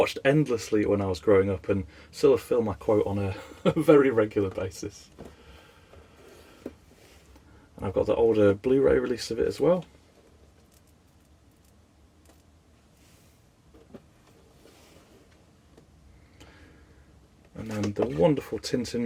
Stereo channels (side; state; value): both; identical; correlation 1.00